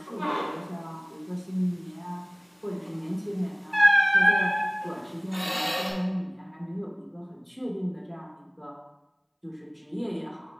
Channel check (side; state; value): both; identical; correlation 1.00